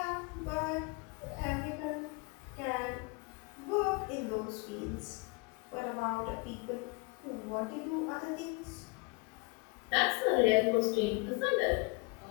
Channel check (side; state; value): right; quieter; 28.3 dB